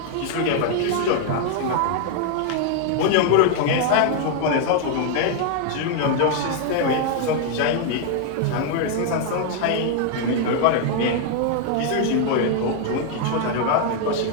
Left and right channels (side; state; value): both; different; correlation 0.00